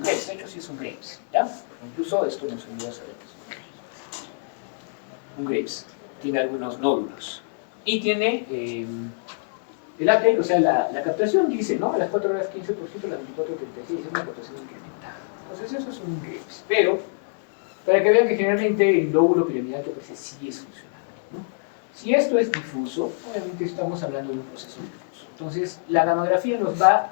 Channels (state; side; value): silent; right; digital silence